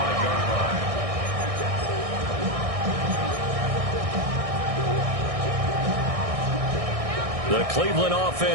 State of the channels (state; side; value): late; left; 1.6 ms